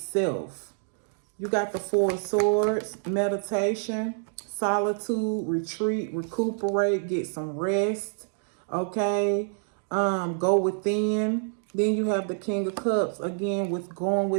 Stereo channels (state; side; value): silent; left; digital silence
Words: You got the Four of Swords, meditation, solitude, retreat, recuperate, get some rest. Okay. Go within. Then you have the King of Cups, again, with going